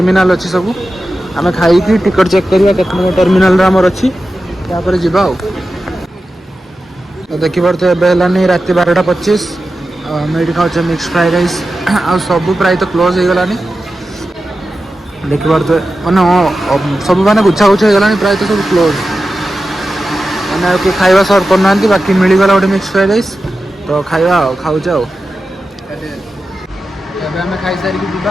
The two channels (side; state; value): both; normal; correlation 0.92